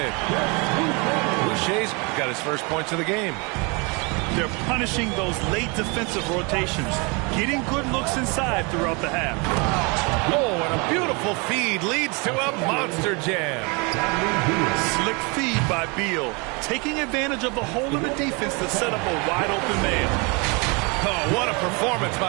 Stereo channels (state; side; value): quieter; left; 30.0 dB